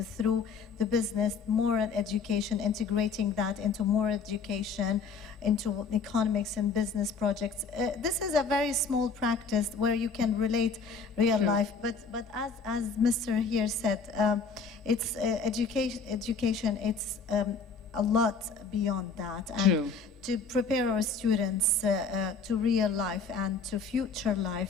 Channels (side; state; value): right; quieter; 4.8 dB